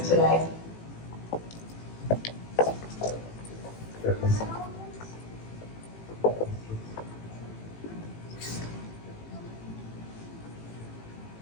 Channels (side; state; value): right; late; 18 ms